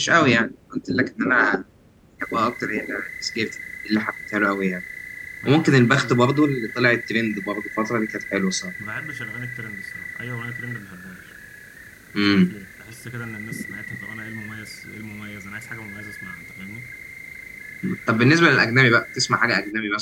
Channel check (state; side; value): identical; both; correlation 1.00